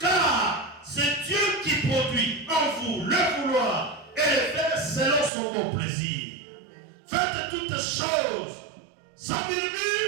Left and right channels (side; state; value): left; drops out; at 5.3 s